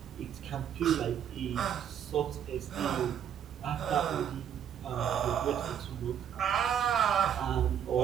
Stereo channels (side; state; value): left; quieter; 9.1 dB